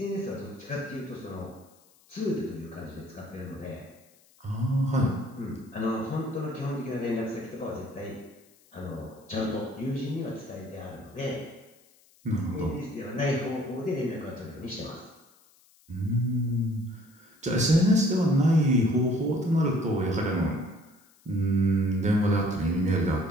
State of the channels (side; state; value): left; noise; hiss, 30 dB below the sound